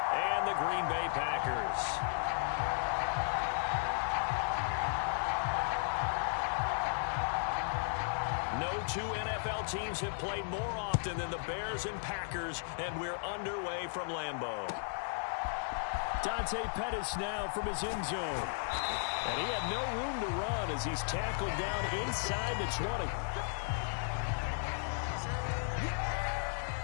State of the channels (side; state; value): right; silent; digital silence